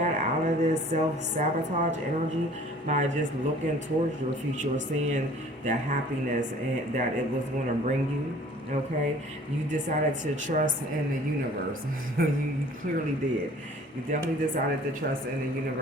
out of this self-sabotage energy by just looking towards your future, seeing the happiness and that it was going to bring you, okay? You decided to trust in the universe. You clearly did. You definitely decided to trust in the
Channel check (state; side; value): normal; both; correlation 0.50